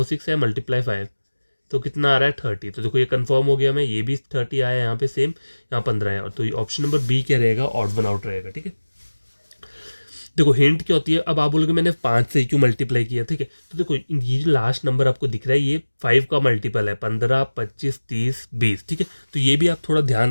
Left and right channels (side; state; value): both; inverted; correlation -1.00